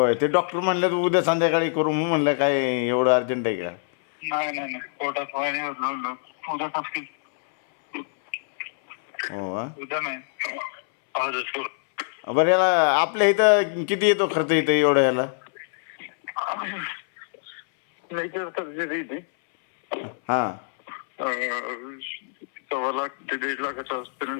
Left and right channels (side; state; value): right; silent; 62 dB below the other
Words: ते डॉक्टर म्हणले उद्या संध्याकाळी करू म्हणलं. काय एवढं अर्जंट आहे का? नाही नाही नाही पोटात पाणी उद्या नक्की हो का? उद्या नाही आजच करू. बरं याला आपल्या इथं किती येतो खर्च इथं एवढं याला? मेजर सर्जरी ती हां 1.25 ते 1.5 लाखाच्या हॉस्पिटल